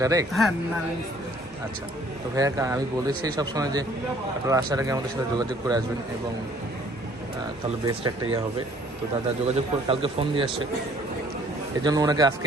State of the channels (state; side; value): normal; both; correlation 0.58